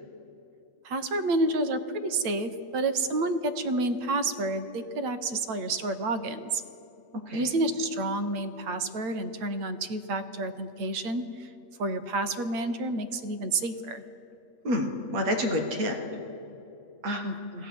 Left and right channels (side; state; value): left; late; 8.3 ms